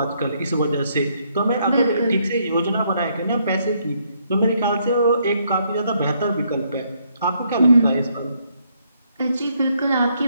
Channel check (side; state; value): both; inverted; correlation -0.72